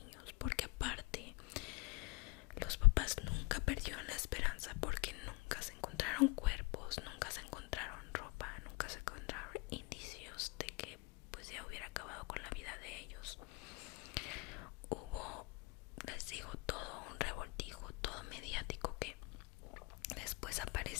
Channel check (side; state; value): right; quieter; 25.5 dB